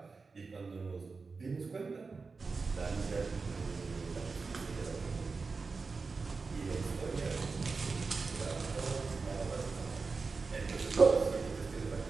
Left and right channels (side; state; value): left; quieter; 4.4 dB